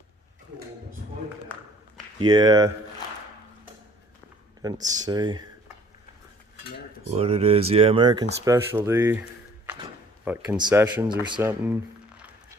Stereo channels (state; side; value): normal; both; correlation 0.56